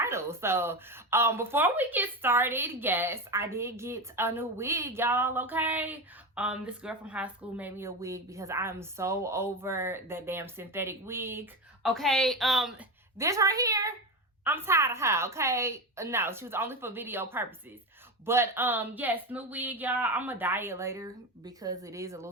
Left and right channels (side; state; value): both; normal; correlation 0.19